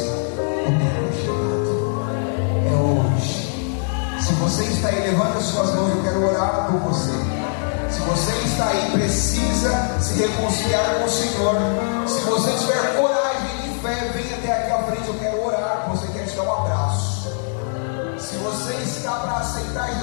o tempo é chegado. É hoje. Se você está aí, levanta as suas mãos, eu quero orar por você. Se você está aí, precisa se reconciliar com o Senhor. Se você tiver coragem e fé, vem até aqui à frente, eu quero orar por você, quero te dar um abraço. Se você está para aceitar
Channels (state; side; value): silent; right; digital silence